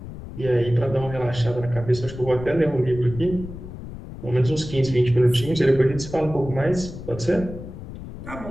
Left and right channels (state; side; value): noise; left; rumble, 12 dB below the sound